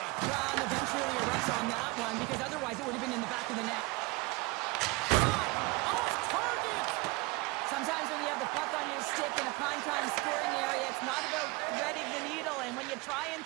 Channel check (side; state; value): left; quieter; 24.6 dB